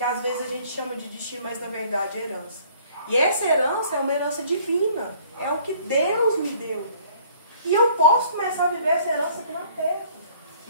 às vezes a gente chama de destino, mas na verdade é herança. E essa herança é uma herança divina. É o que Deus me deu. E eu posso começar a viver essa herança aqui na terra.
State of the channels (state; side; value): inverted; both; correlation -0.56